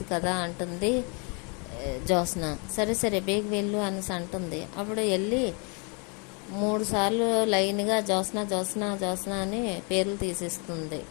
కదా అంటుంది జ్యోత్స్న. సరే సరే బేగ వెళ్ళు అనేసి అంటుంది. అప్పుడు వెళ్ళి 3 సార్లు లైన్గా జ్యోత్స్న జ్యోత్స్న జ్యోత్స్న అని పేర్లు తీసిస్తుంది.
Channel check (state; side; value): quieter; right; 34.1 dB